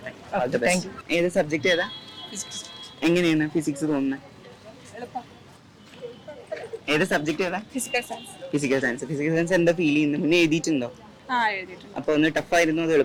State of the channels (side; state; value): both; identical; correlation 1.00